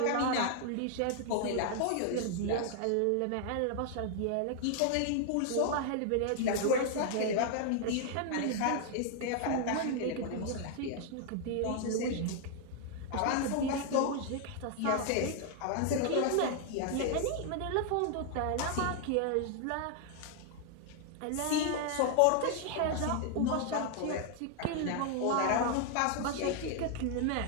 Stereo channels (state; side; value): different; both; correlation 0.00